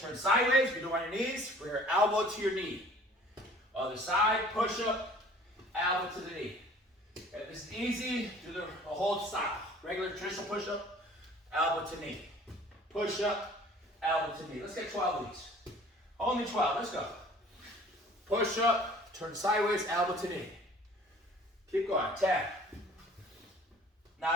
turn sideways. We do it on your knees. Bring your elbow to your knee. Other side, push-up, elbow to the knee. Okay, this is easy. Do the whole style. Regular traditional push-up, elbow to knee. Push-up, elbow to knee. Let's get 12 of these. Only 12. Let's go. Push up, turn sideways, elbow to knee. Keep going. 10,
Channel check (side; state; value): both; normal; correlation 0.50